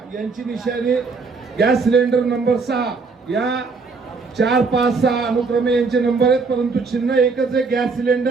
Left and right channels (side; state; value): left; quieter; 4.5 dB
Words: यांची निशाणी गॅस सिलेंडर नंबर 6. या 4, 5, 6 अनुक्रमे यांचे नंबर आहेत, परंतु चिन्ह एकच आहे, गॅस